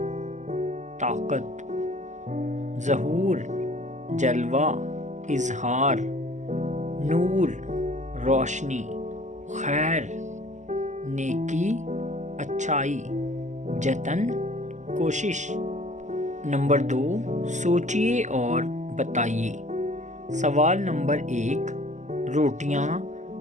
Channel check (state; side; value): late; left; 0.34 ms